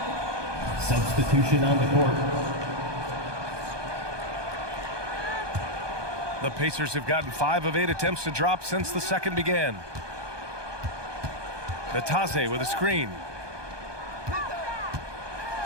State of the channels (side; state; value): left; late; 1.2 ms